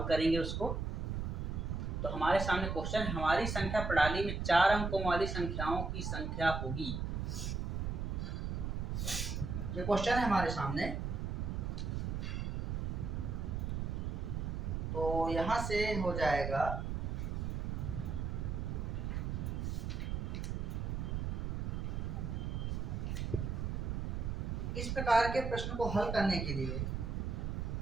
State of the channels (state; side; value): noise; right; rumble, 2 dB below the sound